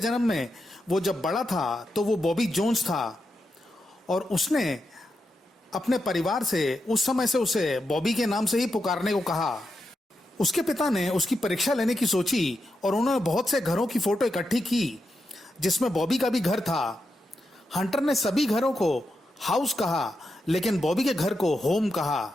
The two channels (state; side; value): normal; both; correlation 0.86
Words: में वो जब बड़ा था तो वो बॉबी जोन्स था और उसने अपने परिवार से उस समय से उसे बॉबी के नाम से ही पुकारने को कहा। उसके पिता ने उसकी परीक्षा लेने की सोची और उन्होंने बहुत से घरों की फोटो इकट्ठी की जिसमें बॉबी का भी घर था। हंटर ने सभी घरों को हाउस कहा लेकिन बॉबी के घर को होम कहा।